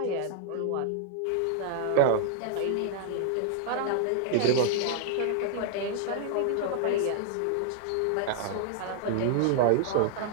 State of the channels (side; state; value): both; different; correlation -0.01